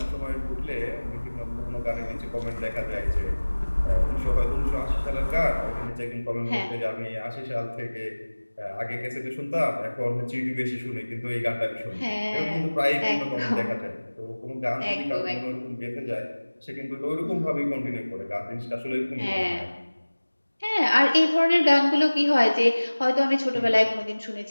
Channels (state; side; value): inverted; both; correlation -1.00